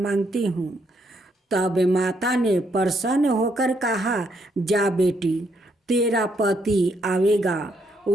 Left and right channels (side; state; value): both; normal; correlation 0.74